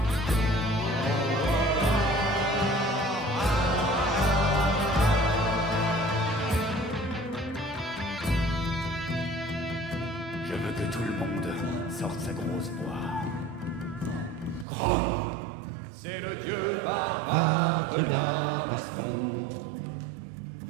Je veux que tout le monde sorte sa grosse poire. Grom, c'est le dieu barbare de la baston.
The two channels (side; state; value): left; drops out; at 14.7 s